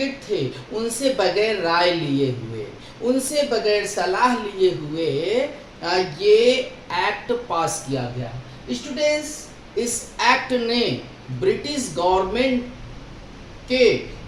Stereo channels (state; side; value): identical; both; correlation 1.00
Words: थे उनसे बगैर राय लिए हुए, उनसे बगैर सलाह लिए हुए ये एक्ट पास किया गया. स्टूडेंट्स, इस एक्ट ने ब्रिटिश गवर्नमेंट के